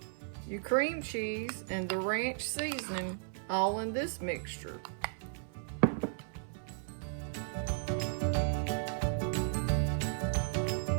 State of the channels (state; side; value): silent; left; 54 dB below the other